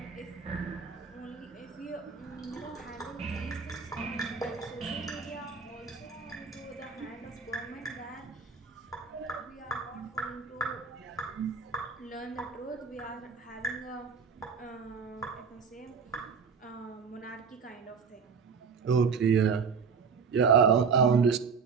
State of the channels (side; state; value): left; quieter; 5.7 dB